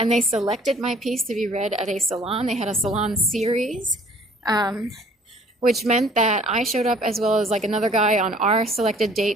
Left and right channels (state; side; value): normal; both; correlation 0.55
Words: they selected my piece to be read at a salon. They had a salon series, which meant that I showed up as well as like another guy on our selected